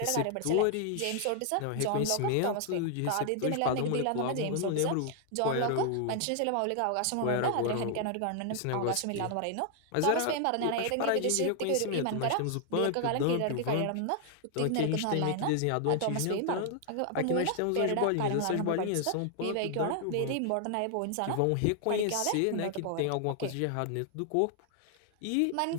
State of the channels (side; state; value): both; different; correlation 0.00